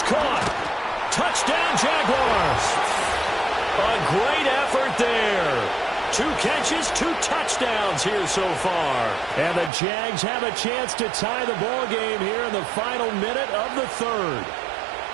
caught. Touchdown, Jaguars. A great effort there. 2 catches, 2 touchdowns here so far. And the Jags have a chance to tie the ball game here in the final minute of the 3rd.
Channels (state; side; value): drops out; left; at 9.7 s